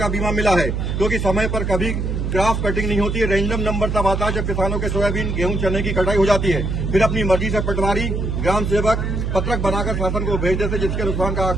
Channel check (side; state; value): right; noise; hum, 1 dB below the sound